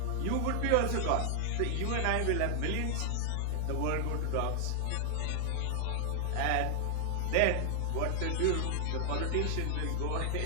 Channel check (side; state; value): both; different; correlation 0.00